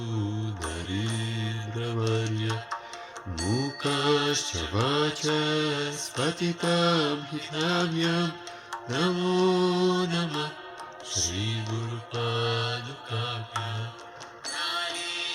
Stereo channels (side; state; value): both; identical; correlation 1.00